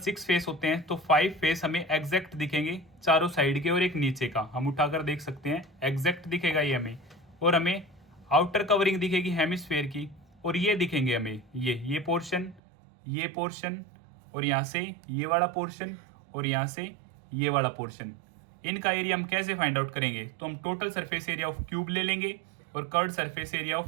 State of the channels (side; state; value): left; drops out; at 12.6 s